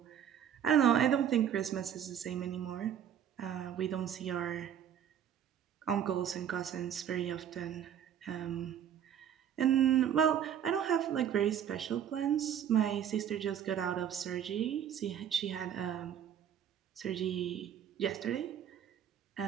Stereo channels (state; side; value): quieter; left; 9.3 dB